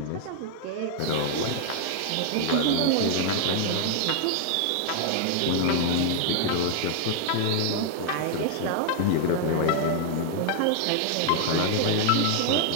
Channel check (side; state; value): both; different; correlation 0.00